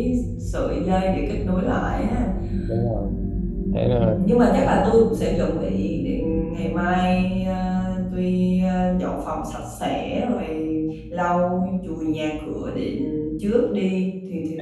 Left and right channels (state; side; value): identical; both; correlation 1.00